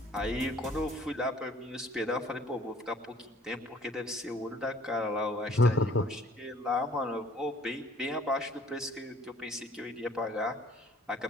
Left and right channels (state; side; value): normal; both; correlation 0.56